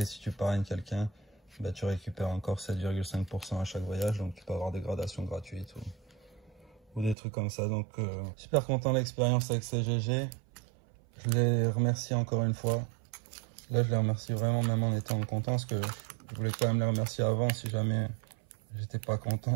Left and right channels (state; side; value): drops out; left; at 7.2 s